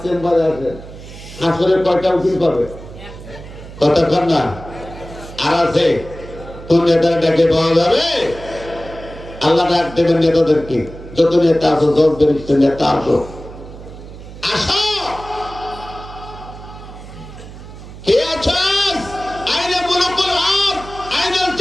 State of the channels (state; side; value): noise; right; hum, 15 dB below the sound